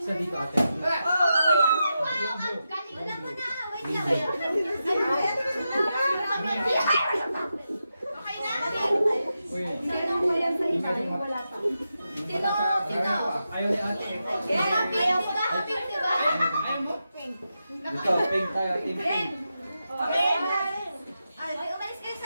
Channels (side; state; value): both; inverted; correlation -0.88